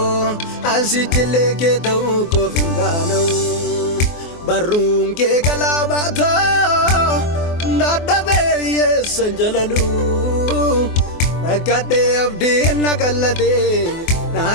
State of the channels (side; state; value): right; late; 24 ms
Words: ansichile keto ko fingano barun ke galabato nadabe yesanjalalu nakade abdi nakalade